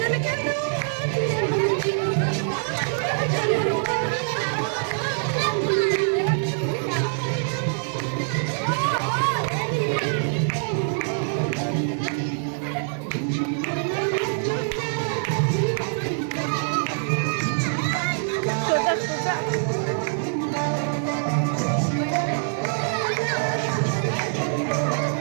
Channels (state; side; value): silent; left; digital silence